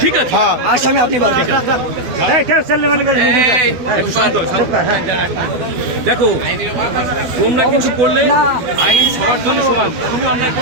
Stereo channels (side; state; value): left; late; 12 ms